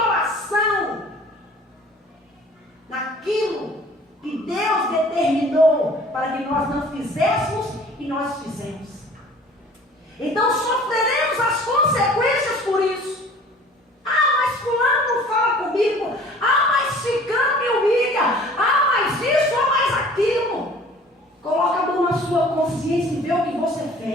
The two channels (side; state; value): both; normal; correlation 0.49